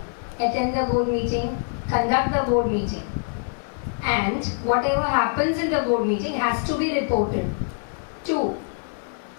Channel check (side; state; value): right; silent; digital silence